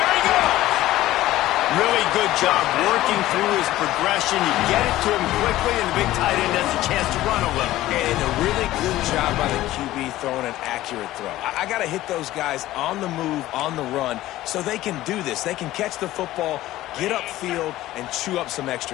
he goes. Really good job working through his progression. You get it to him quickly, and the big tight end has a chance to run a little. And a really good job by the QB throwing an accurate throw. I got to hit those guys on the move, on the run, so they can do this. They can catch the football, get upfield, and chew up some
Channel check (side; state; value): right; quieter; 15.5 dB